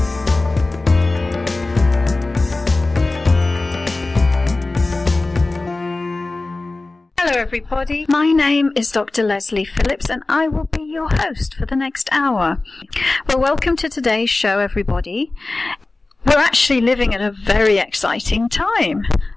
Hello everybody, my name is Dr. Lesley Phillips and I will be your host for the next hour. Well, welcome to today's show everybody. We're actually living at a very exciting time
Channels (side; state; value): right; quieter; 3.2 dB